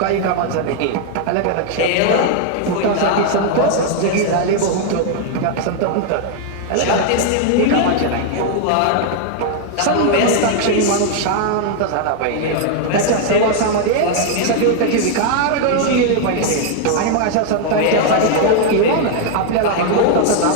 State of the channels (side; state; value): both; different; correlation 0.00